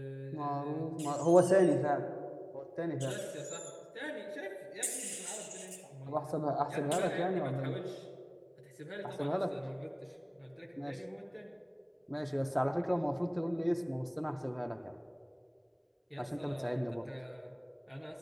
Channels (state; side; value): identical; both; correlation 1.00